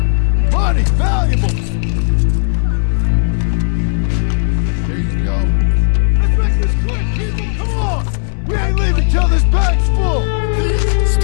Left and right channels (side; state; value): right; silent; 70 dB below the other